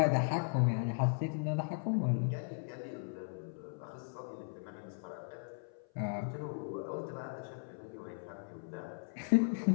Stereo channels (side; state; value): right; silent; 53 dB below the other